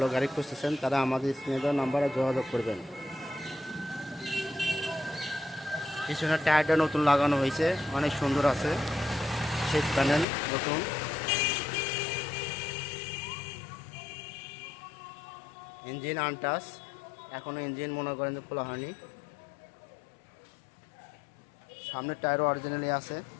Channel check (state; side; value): drops out; right; at 10.2 s